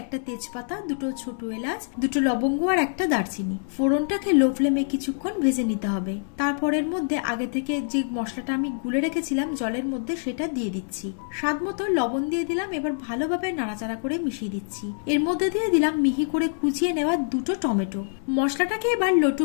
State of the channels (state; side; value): silent; right; digital silence